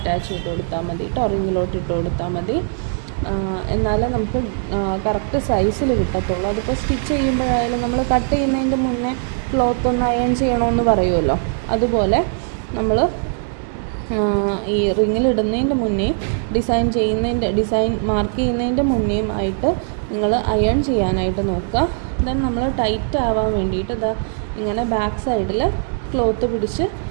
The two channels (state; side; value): silent; left; digital silence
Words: ചെയ്ത് കൊടുത്താൽ മതി കേട്ടോ, റിങ്ങിലോട്ട് ഇട്ട് കൊടുത്താൽ മതി. എന്നാലേ നമുക്ക് കറക്റ്റ് സൈസിൽ കിട്ടത്തുള്ളൂ. അതിപ്പോൾ സ്റ്റിച്ച് ചെയ്യുമ്പോഴായാലും നമ്മൾ കട്ട് ചെയ്യുന്നതിൻ്റെ മുന്നേ ക്ലോത്ത് ഒന്ന് അയൺ ചെയ്യണമെന്ന് പറയുമല്ലോ, അതുപോലെ നമ്മൾ ഈ റിങ്ങിലിടുന്നതിൻ്റെ മുന്നേ ഡിസൈൻ മാർക്ക് ചെയ്യുന്നതിൻ്റെ മുന്നേയും ആയിട്ട് നിങ്ങൾ അയൺ ചെയ്യാനായിട്ട് നോക്കുക. ദെൻ നമ്മൾ ടൈറ്റ് ആവാൻ വേണ്ടിയിട്ട് ഇതാ ഇങ്ങനെ ബാക്ക് സൈഡിൽ ക്ലോത്ത് പിടിച്ച്